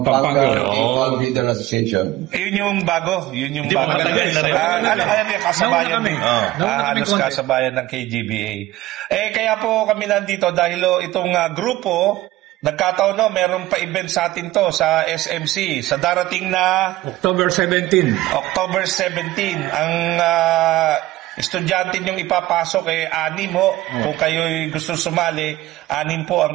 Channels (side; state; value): left; quieter; 16.8 dB